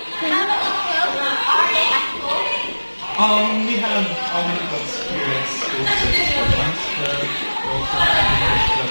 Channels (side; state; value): both; inverted; correlation -1.00